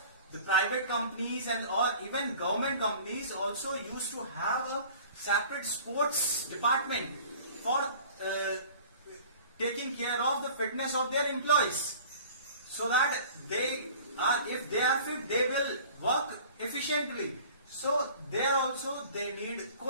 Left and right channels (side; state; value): both; inverted; correlation -0.46